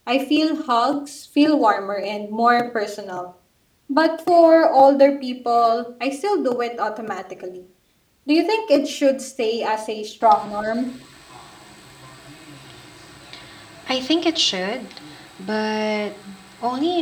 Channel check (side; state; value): both; identical; correlation 1.00